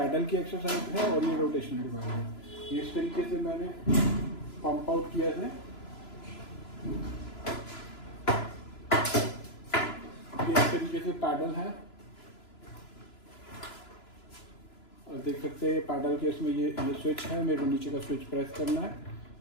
की एक्सरसाइज है, और ये रोटेशनल डिवाइस है। ये इस तरीके से मैंने पंप आउट किया है। ये इस तरीके से पैडल है, और देख सकते हैं पैडल के इसमें ये स्विच है। मेरे को नीचे का स्विच प्रेस करना है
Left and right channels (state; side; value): late; right; 3.0 ms